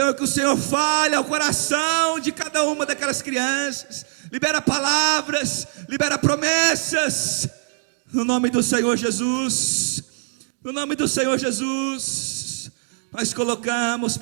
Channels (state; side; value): silent; left; 64 dB below the other